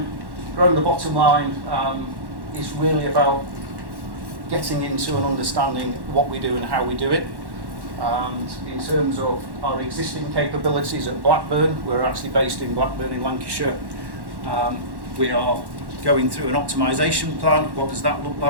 Growing the bottom line is really about getting into and understanding what we do and how we do it. And in terms of our existing capabilities at Blackburn, we're actually based in Blackburn in Lancashire. We are going through an optimisation plan. What does that look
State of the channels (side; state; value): left; late; 1.1 ms